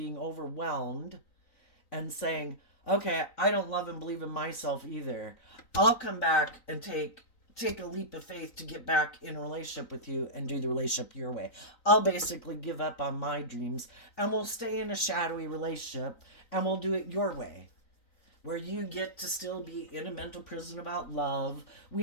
overwhelmed and saying, okay, I don't love and believe in myself either, I'll come back and take a leap of faith to get back in a relationship with you and do the relationship your way. I'll basically give up on my dreams and we'll stay in a shadowy relationship and we'll do it your way. where you get to still be in a mental prison about love.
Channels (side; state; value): right; late; 3.9 ms